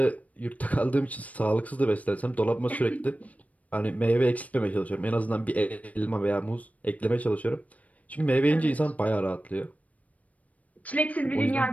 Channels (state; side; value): late; right; 0.070 ms